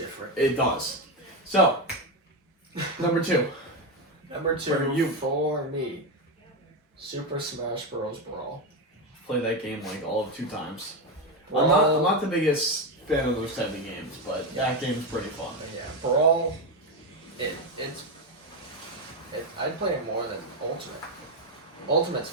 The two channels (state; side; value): normal; both; correlation 0.11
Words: It does. So, number 2. Number 2 For you. for me, Super Smash Bros. Brawl. Played that game like all of 2 times. Brawl. I'm not the biggest fan of those type of games, but that game's pretty fun. Yeah, Brawl. I'd play it more than Ultimate. Ultimate's